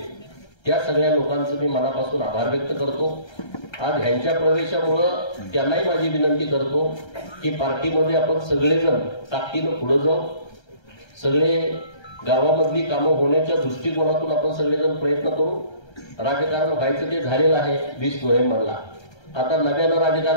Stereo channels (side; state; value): right; late; 1.3 ms